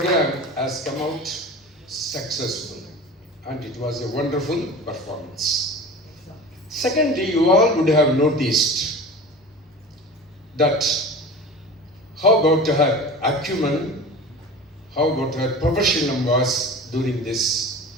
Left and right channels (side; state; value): both; normal; correlation 0.35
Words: has come out successful, and it was a wonderful performance. Secondly, you all would have noticed that how about her acumen, how about her professionalism was during this